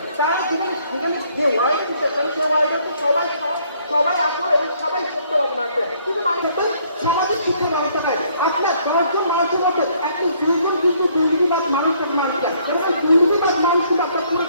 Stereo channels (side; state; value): both; inverted; correlation -0.65